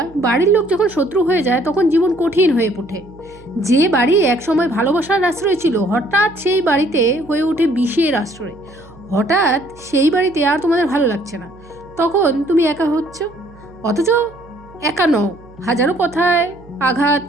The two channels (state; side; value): noise; right; hum, 23 dB below the sound